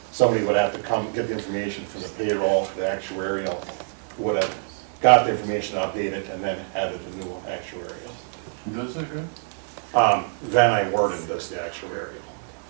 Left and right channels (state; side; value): silent; left; 62 dB below the other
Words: somebody would have to come get the information from the payroll, the actuarial, who would have got the information updated and then added a new actuarial. Who does that, good? Van I. Worden does the actuarial.